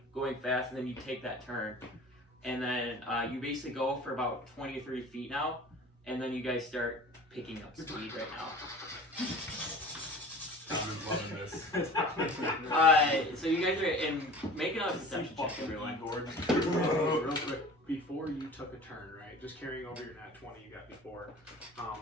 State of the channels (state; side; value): normal; both; correlation 0.41